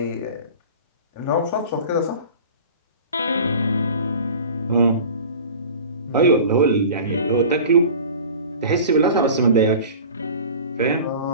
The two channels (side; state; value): both; inverted; correlation -0.39